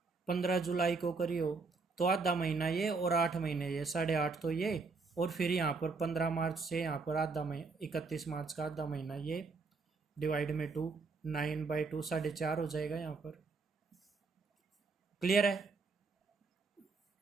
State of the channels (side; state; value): left; quieter; 4.2 dB